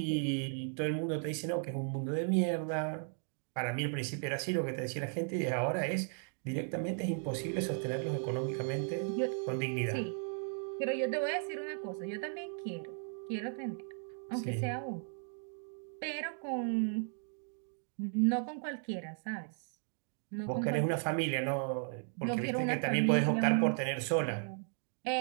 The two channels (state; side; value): silent; left; 54 dB below the other